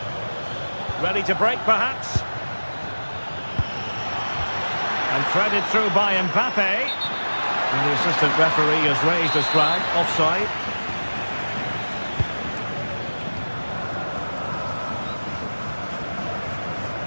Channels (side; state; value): both; inverted; correlation -1.00